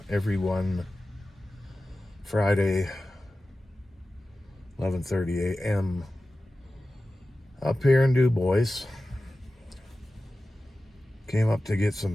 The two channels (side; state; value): both; normal; correlation 0.95